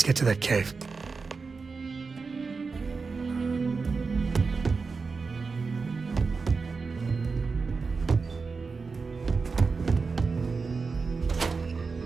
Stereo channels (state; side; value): quieter; left; 4.6 dB